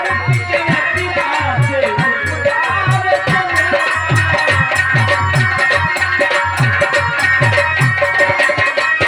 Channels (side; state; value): both; identical; correlation 1.00